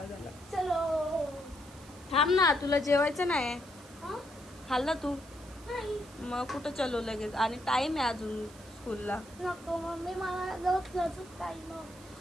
आला. चलो. थांब ना, तुला जेवायचं नाही? हा? खाल्लं तू? नाही. मग कुठं चलो लगेच? आणि टाइम आहे अजून स्कूलला. नको मम्मी, मला रोज टाइम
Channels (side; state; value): right; noise; hiss, 21 dB below the sound